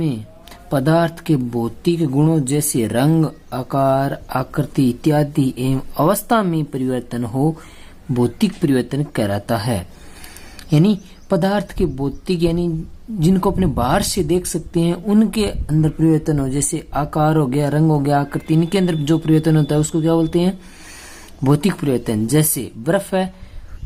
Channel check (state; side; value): identical; both; correlation 1.00